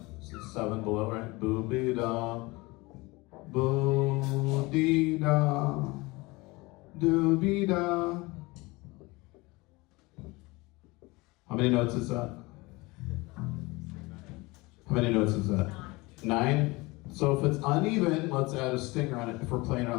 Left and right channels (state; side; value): quieter; right; 23.4 dB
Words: 7 below, right? Boo be da, boo dee da, do be da. How many notes is that? How many notes is that? 9? So if it's uneven, let's add a stinger on it if we're playing it